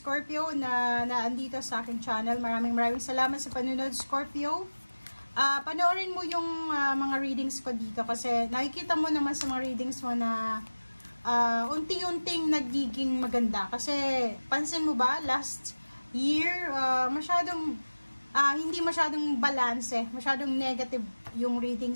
na naandito sa aking channel. Maraming salamat sa panunod, Scorpio. Panoorin mo yung mga readings ko dito kasi nakikita mo naman sa mga readings mo na unti-unting nagiging maganda. Kasi pansin mo ba, last year, hindi masyadong balance, masyadong negative yung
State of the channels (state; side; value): inverted; both; correlation -1.00